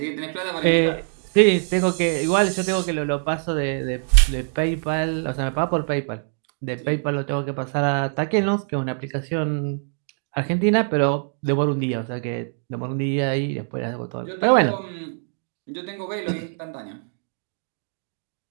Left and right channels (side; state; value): left; silent; 63 dB below the other